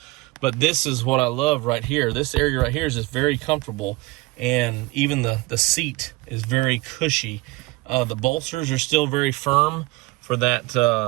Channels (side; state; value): left; quieter; 22.8 dB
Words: But this is what I love right here. This area right here is just very comfortable, and even the seat is very cushy. The bolsters are still very firm for